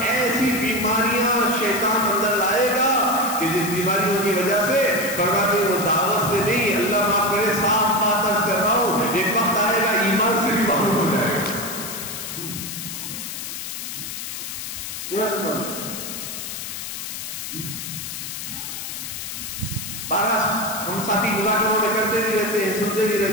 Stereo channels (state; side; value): noise; left; hiss, 7 dB below the sound